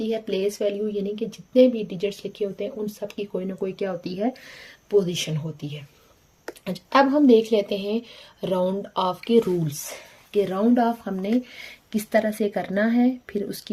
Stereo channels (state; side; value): identical; both; correlation 1.00